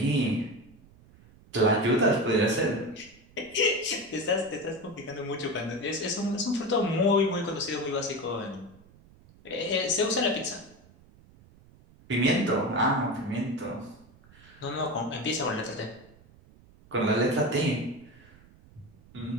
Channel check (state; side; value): noise; right; rumble, 25 dB below the sound